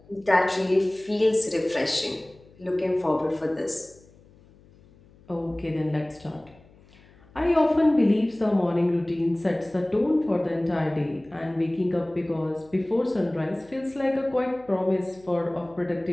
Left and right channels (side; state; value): left; noise; hum, 27 dB below the sound